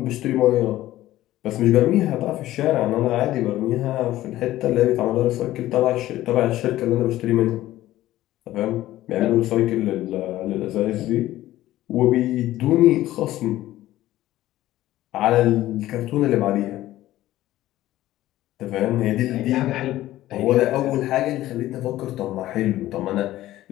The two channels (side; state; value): right; quieter; 15.0 dB